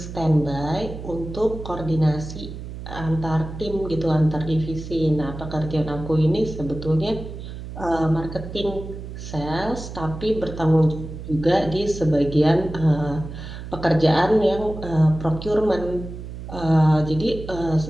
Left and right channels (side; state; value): right; noise; hum, 10 dB below the sound